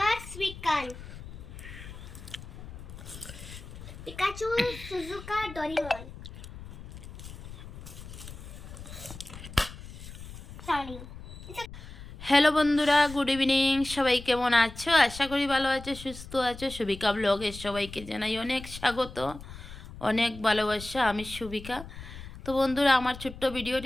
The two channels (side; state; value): left; noise; rumble, 13 dB below the sound